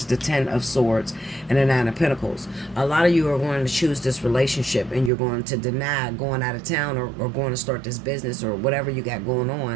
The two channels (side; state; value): left; drops out; at 5.1 s